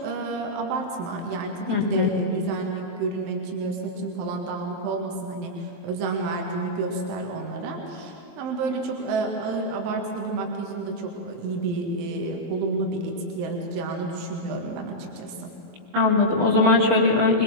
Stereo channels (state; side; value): late; left; 23 ms